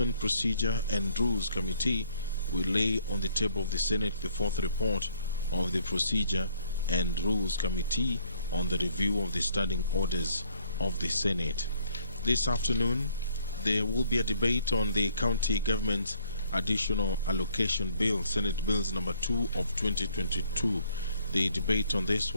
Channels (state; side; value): inverted; both; correlation -0.64